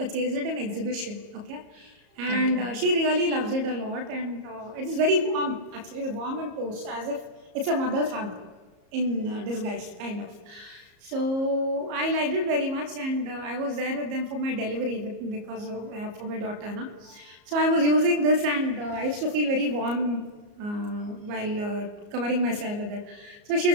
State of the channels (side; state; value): left; late; 34 ms